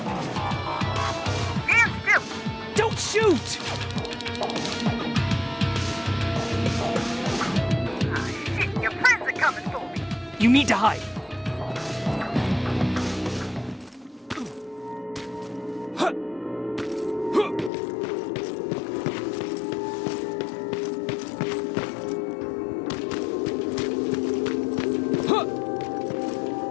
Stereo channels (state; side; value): drops out; right; at 17.7 s